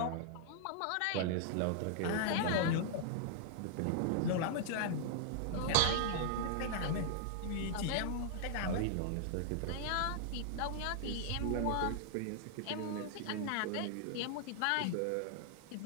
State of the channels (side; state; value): both; different; correlation -0.01